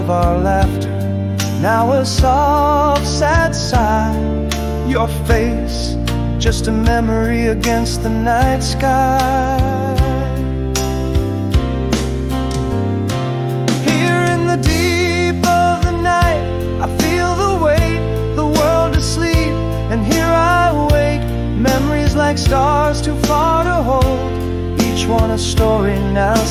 our laughter, now a soft, sad sigh. Your face, just a memory against the night sky. Here in the deep of the night, I feel the weight, the world asleep, and here I wake. Memories like stars too far to hold, each one a story now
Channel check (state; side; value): identical; both; correlation 1.00